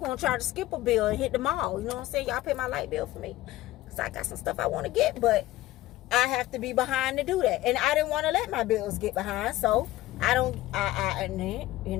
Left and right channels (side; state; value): right; quieter; 16.1 dB